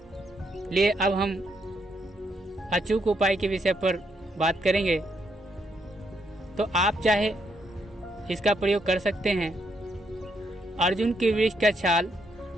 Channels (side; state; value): both; normal; correlation 0.76